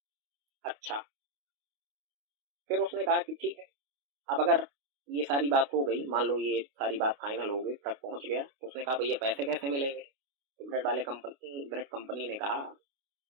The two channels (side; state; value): left; late; 28 ms